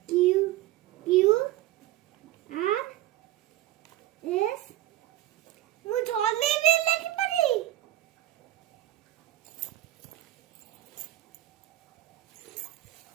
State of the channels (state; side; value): quieter; left; 15.1 dB